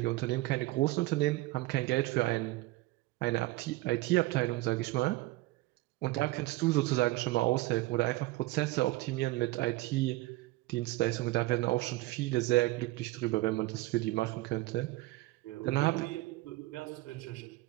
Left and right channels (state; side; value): quieter; left; 19.1 dB